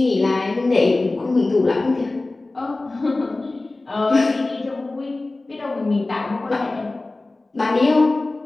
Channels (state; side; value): quieter; right; 3.1 dB